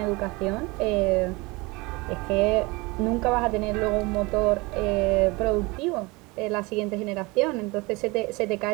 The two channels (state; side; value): quieter; left; 24.5 dB